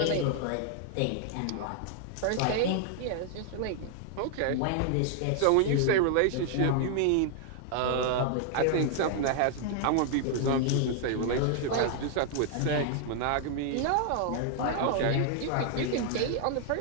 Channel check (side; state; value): both; different; correlation 0.00